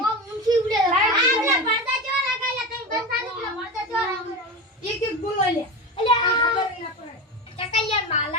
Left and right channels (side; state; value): both; normal; correlation 0.24